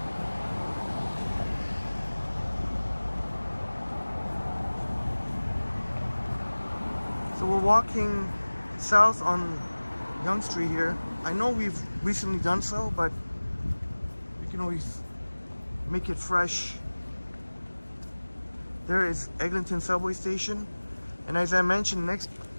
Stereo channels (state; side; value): inverted; both; correlation -1.00